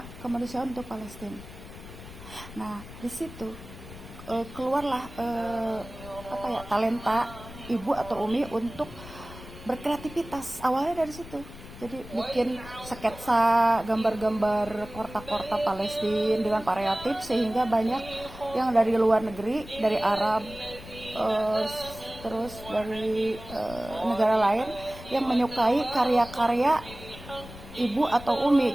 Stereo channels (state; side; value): noise; left; rumble, 15 dB below the sound